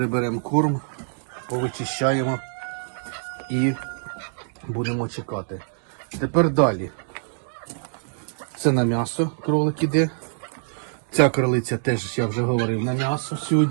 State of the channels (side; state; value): left; silent; digital silence